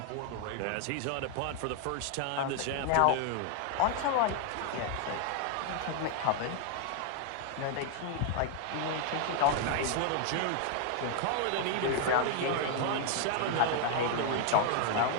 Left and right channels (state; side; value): different; both; correlation 0.00